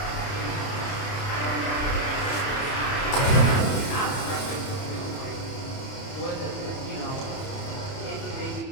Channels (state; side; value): late; right; 30 ms